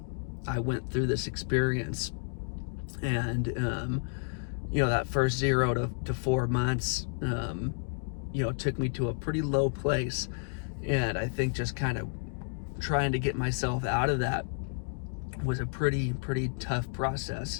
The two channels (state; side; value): silent; right; digital silence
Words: I went through this experience. And that first 0 to 4 months, took me to a pretty low place. And I think just kind of trying to get myself out of that was a pretty tough